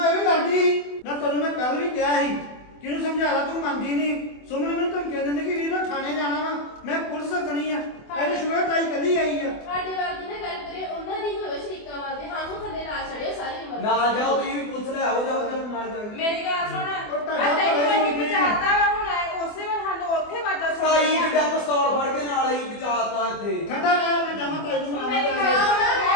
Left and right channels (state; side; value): late; right; 24 ms